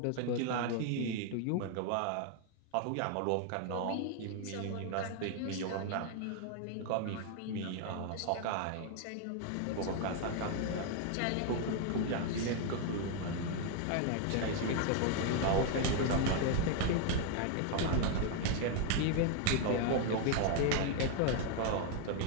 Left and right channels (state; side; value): different; both; correlation 0.01